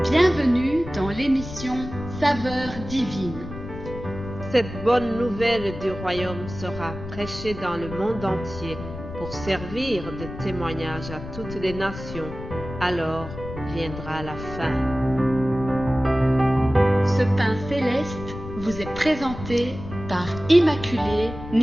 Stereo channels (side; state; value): left; noise; rumble, 11 dB below the sound